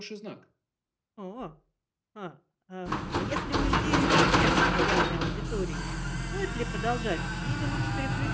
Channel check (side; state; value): both; identical; correlation 1.00